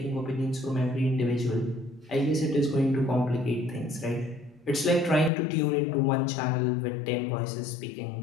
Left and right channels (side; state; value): right; drops out; at 5.3 s